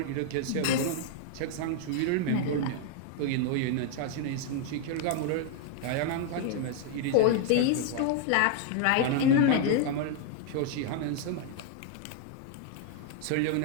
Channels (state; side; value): different; both; correlation 0.00